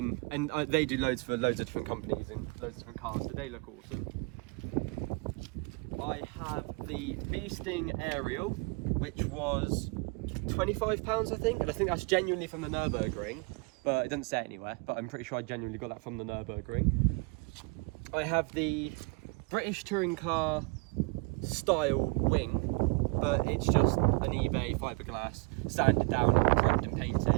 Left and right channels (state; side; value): quieter; left; 30.6 dB